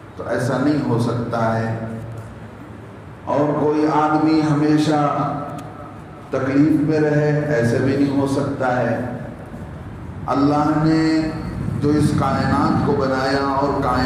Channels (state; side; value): identical; both; correlation 1.00